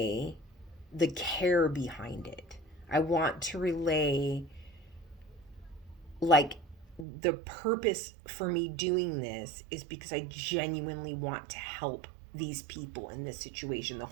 the care behind it. I want to relay, like, the purpose for me doing this is because I genuinely want to help these people in this situation. The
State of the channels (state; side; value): drops out; left; at 7.1 s